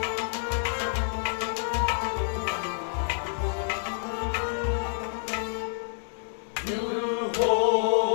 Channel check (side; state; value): right; silent; digital silence